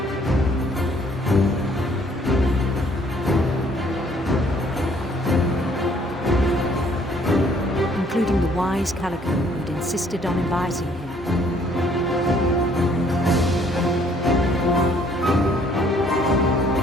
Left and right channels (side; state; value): both; normal; correlation 0.62